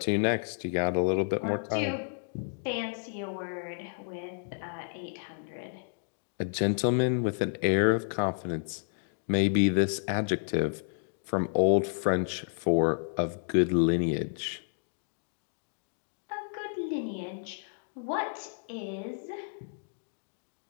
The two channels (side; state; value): right; silent; digital silence